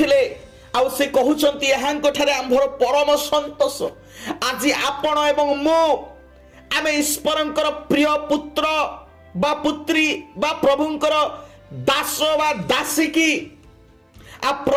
आउ से कहउछंती यहाँ कठारे आंभर परम संतोष आज आपण एवं मो आमे ईश्वरंकर प्रिय पुत्र बा पुत्री बा प्रभुंकर दास बा दासी की आ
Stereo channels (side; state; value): both; identical; correlation 1.00